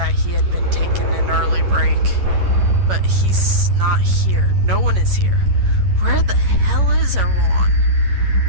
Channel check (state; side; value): late; left; 11 ms